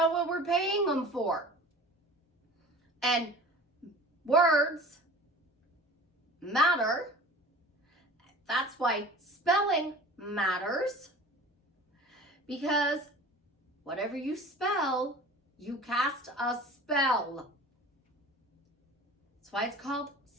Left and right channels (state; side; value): normal; both; correlation 0.41